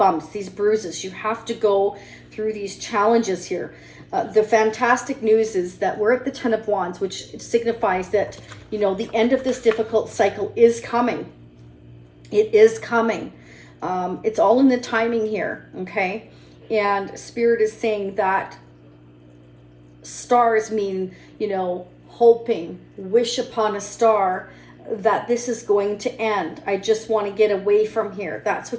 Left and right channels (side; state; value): both; identical; correlation 1.00